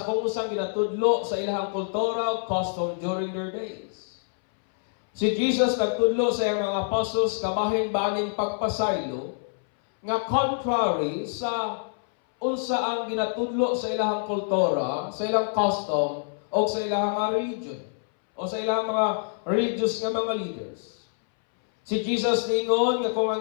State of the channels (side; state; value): right; silent; 61 dB below the other